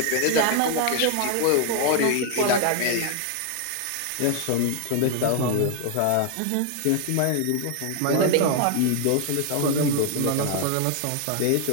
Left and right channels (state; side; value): different; both; correlation 0.00